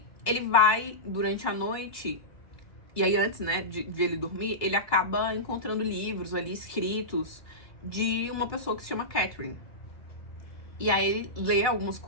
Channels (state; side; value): late; right; 2.3 ms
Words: ele vai, durante a noite, e aí antes, né, de ele dormir, ele acaba encontrando livros ali escritos de uma pessoa que se chama Catherine. E aí ele lê algumas